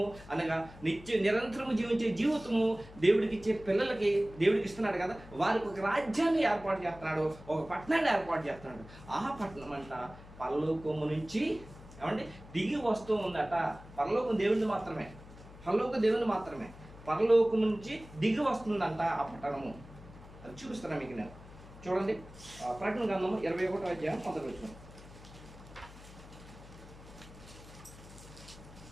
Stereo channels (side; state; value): left; noise; hum, 18 dB below the sound